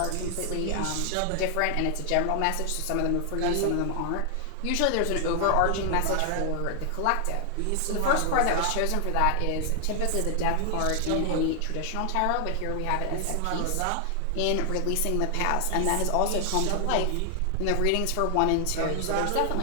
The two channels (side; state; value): both; different; correlation 0.00